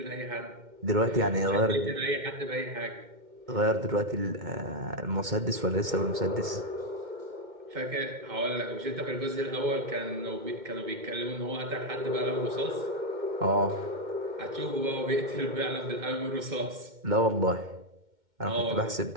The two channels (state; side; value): late; left; 2.1 ms